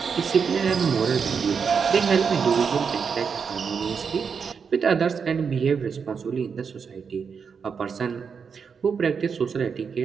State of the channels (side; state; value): left; quieter; 6.1 dB